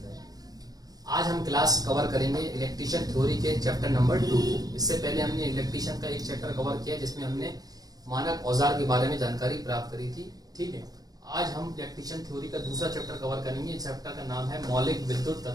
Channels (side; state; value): left; late; 0.18 ms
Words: रहे। आज हम क्लास कवर करेंगे इलेक्ट्रीशियन थ्योरी के चैप्टर नंबर 2। इससे पहले हमने इलेक्ट्रीशियन का एक चैप्टर कवर किया जिसमें हमने मानक औजार के बारे में जानकारी प्राप्त करी थी। ठीक है, आज हम इलेक्ट्रीशियन थ्योरी का दूसरा चैप्टर कवर करेंगे। इस चैप्टर का नाम है मौलिक विद्युत